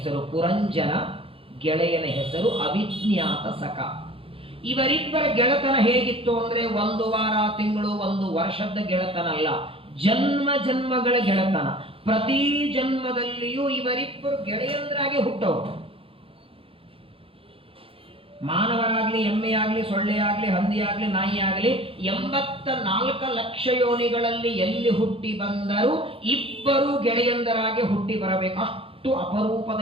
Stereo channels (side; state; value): left; late; 0.27 ms